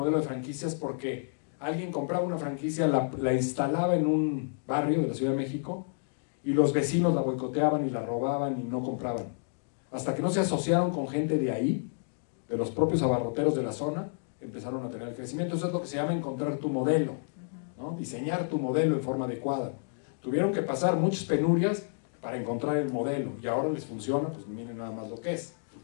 de franquicias porque alguien compraba una franquicia, la instalaba en un barrio de la Ciudad de México y los vecinos la boicoteaban y la robaban y no compraban. Hasta que no se asociaron con gente de ahí, de los propios abarroteros de la zona, empezaron a tener el crecimiento. Eso es lo que se llama encontrar tu modelo, ¿no? Diseñar tu modelo en forma adecuada. Tuvieron que pasar muchas penurias para encontrar el modelo y ahora les funciona, pues miren nada más lo que es.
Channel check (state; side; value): silent; right; digital silence